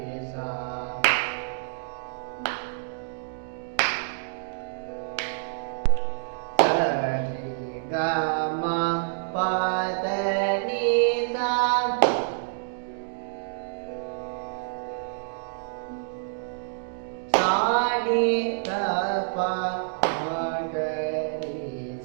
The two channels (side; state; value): left; silent; digital silence